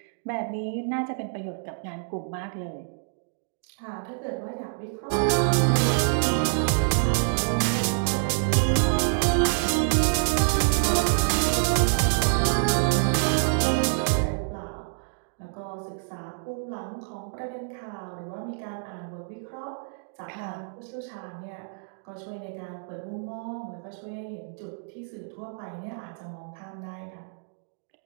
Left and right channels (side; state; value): left; silent; digital silence